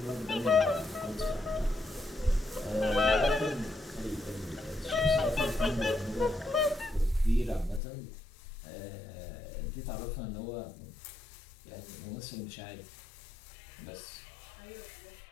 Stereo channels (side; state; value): right; drops out; at 7.8 s